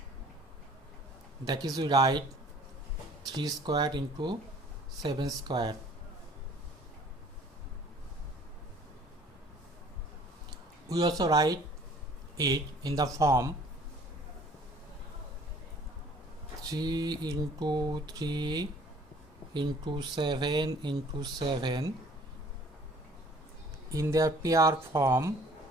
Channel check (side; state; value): both; normal; correlation 0.53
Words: That is, we write 3 square into 7 square. We also write it in the form 3 into 3 into 7 into 7 in their pair form.